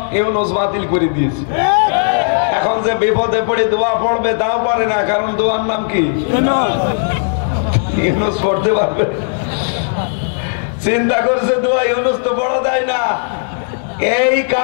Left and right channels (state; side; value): silent; right; digital silence